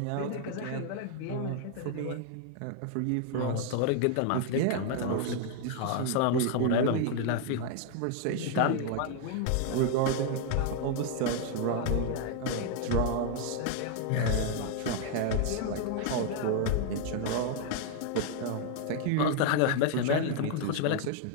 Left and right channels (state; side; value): different; both; correlation 0.00